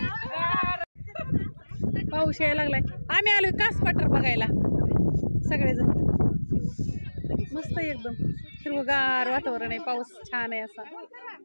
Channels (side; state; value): both; inverted; correlation -1.00